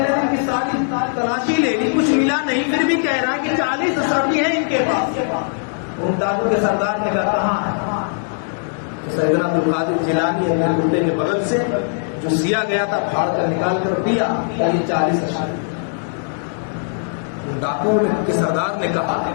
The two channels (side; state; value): right; silent; digital silence